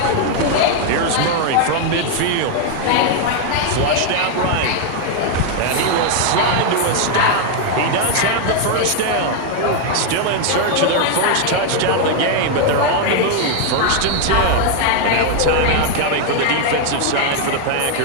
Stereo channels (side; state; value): both; different; correlation 0.00